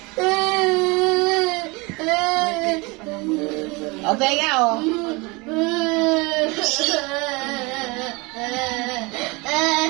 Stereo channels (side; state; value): left; quieter; 26.2 dB